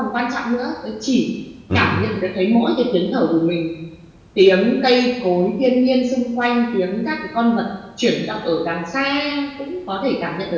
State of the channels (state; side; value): identical; both; correlation 1.00